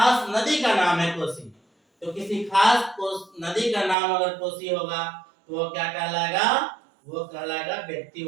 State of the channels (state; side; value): drops out; left; at 4.0 s